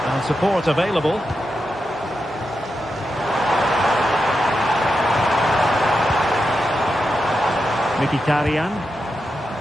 And support available. Mkhitaryan.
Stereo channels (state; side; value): normal; both; correlation 0.88